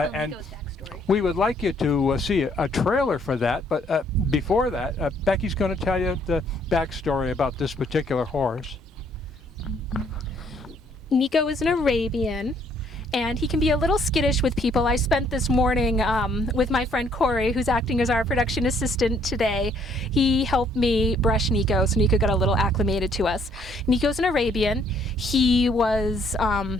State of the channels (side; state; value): both; normal; correlation 0.66